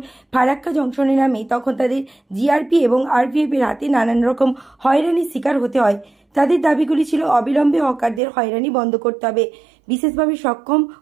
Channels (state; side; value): drops out; left; at 8.2 s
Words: ফারাক্কা জংশনে নামে তখন তাদের জিআরপি এবং আরপিএফ এর হাতে নানান রকম হয়রানির শিকার হতে হয়। তাদের দাবিগুলি ছিল অবিলম্বে হকারদের হয়রানি বন্ধ করতে হবে, বিশেষভাবে সক্ষম